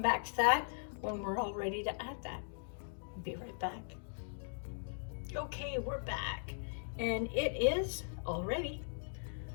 back to that when we're all ready to add that. Be right back. Okay, we're back. And it is all ready.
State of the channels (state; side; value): silent; right; digital silence